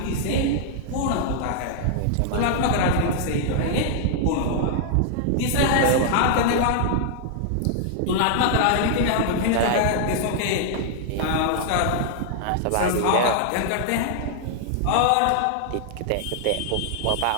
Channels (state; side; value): different; both; correlation -0.01